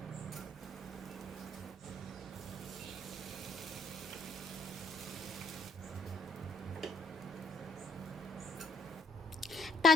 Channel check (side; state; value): both; normal; correlation 0.71